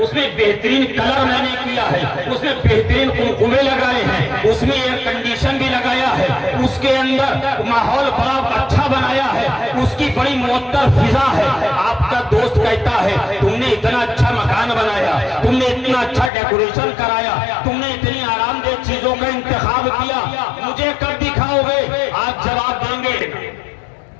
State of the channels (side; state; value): right; drops out; at 16.3 s